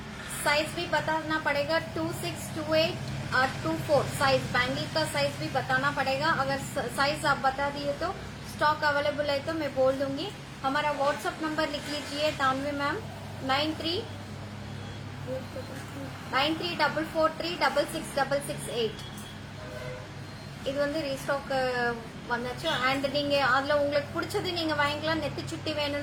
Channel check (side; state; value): both; identical; correlation 1.00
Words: Size भी बताना पड़ेगा 26, 28 और 24 साइज. बैंगल का साइज भी बताना पड़ेगा. अगर साइज आप बता दिए तो स्टॉक अवेलेबल है तो मैं बोल दूंगी. हमारा व्हाट्सएप नंबर लिख लीजिए तानवी मैम 9344366668. இது வந்து ரீஸ்டாக் வந்தாச்சு. அண்ட் நீங்க அதுல உங்களுக்கு பிடிச்சது நீங்க வாங்கிக்கலாம். நெத்தி சுட்டி